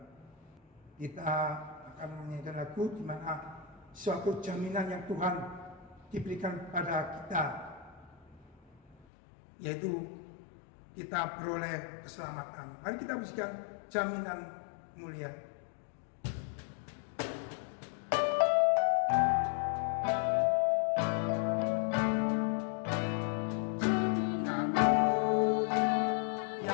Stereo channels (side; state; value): right; drops out; at 9.1 s